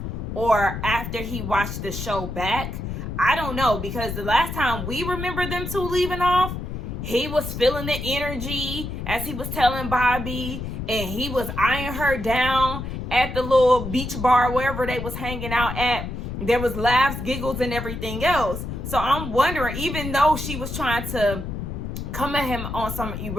or after he watched the show back. I don't know, because the last time we remember them two leaving off, he was feeling the energy as he was telling Bobby, and he was eyeing her down at the little beach bar, wherever they was hanging out at. There was laughs, giggles, and everything else. So I'm wondering, even though she was trying to come at him on some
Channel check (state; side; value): noise; left; rumble, 6 dB below the sound